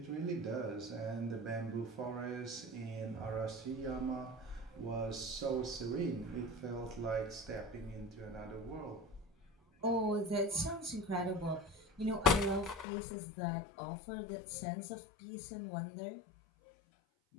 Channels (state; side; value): drops out; right; at 12.9 s